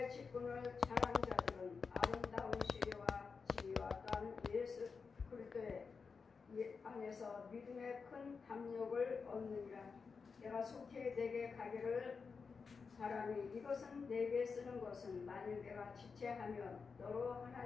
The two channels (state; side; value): quieter; right; 5.2 dB